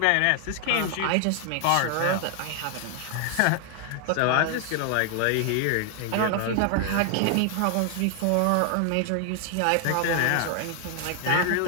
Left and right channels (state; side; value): different; both; correlation 0.00